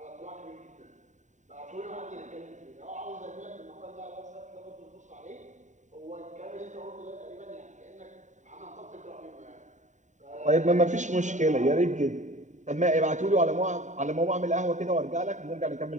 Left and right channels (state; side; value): late; left; 0.35 ms